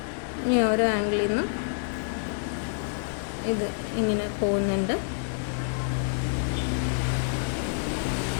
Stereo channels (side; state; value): right; silent; digital silence